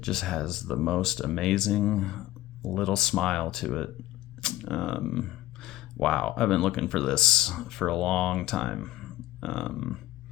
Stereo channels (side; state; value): right; quieter; 15.4 dB